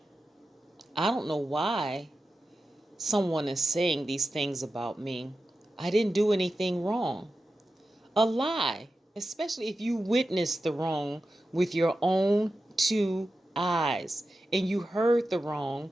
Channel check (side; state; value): both; normal; correlation 0.92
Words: I don't know why someone is saying these things about me. I didn't do anything wrong. A lie, especially if you witnessed the wrong with your own two eyes and you heard the wrong